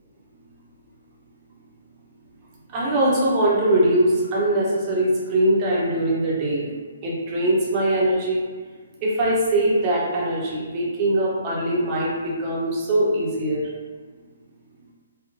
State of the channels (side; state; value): both; inverted; correlation -0.59